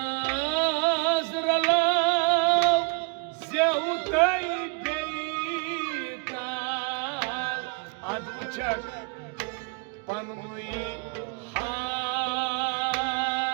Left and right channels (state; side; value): quieter; left; 34.5 dB